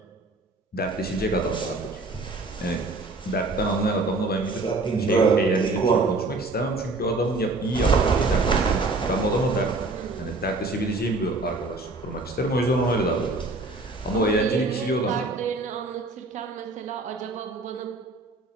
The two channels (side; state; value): left; quieter; 3.1 dB